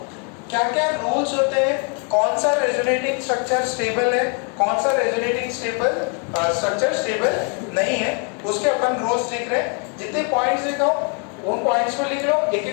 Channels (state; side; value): quieter; right; 38.7 dB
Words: क्या क्या रूल्स होते हैं? कौन सा रेजोनेटिंग स्ट्रक्चर स्टेबल है, कौन सा रेजोनेटिंग स्ट्रक्चर स्टेबल नहीं है, उसके अपन रूल्स लिख रहे हैं। जितने पॉइंट्स लिखा हूं उन पॉइंट्स को लिख लो, एक